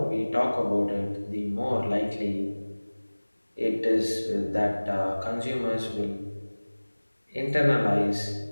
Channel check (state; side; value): inverted; both; correlation -1.00